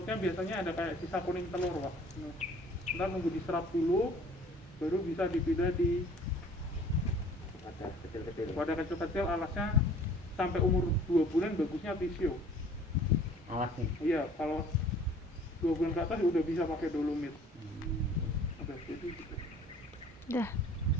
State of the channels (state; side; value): normal; both; correlation 0.51